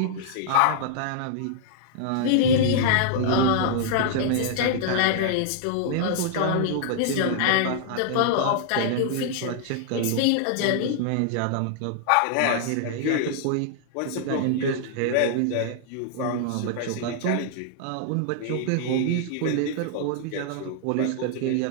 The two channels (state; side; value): different; both; correlation -0.01